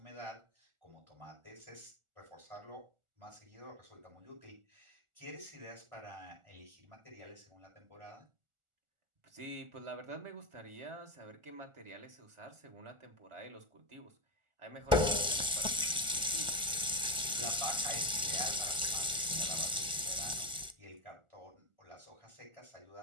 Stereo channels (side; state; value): left; late; 1.4 ms